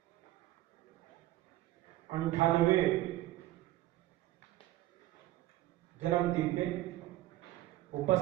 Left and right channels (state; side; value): quieter; left; 16.1 dB